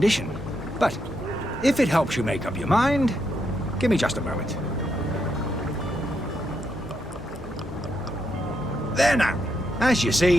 But if it helps you make up your mind, give me just a moment. There now. As you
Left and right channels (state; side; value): normal; both; correlation 0.79